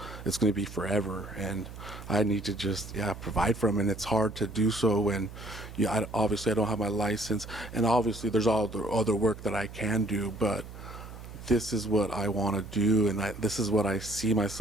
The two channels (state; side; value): noise; right; hum, 13 dB below the sound